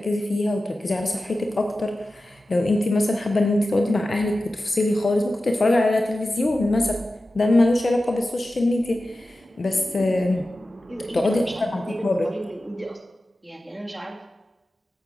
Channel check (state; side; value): normal; both; correlation 0.94